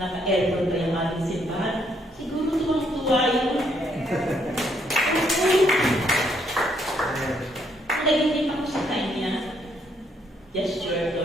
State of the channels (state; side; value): normal; both; correlation 0.71